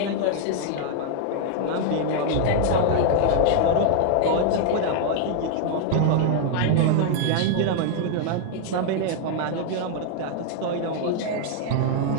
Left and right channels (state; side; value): different; both; correlation 0.00